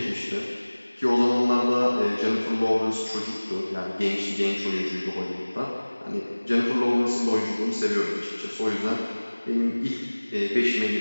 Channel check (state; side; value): inverted; both; correlation -1.00